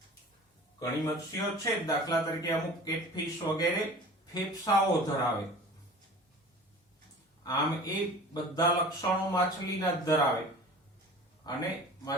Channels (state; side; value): normal; both; correlation 0.41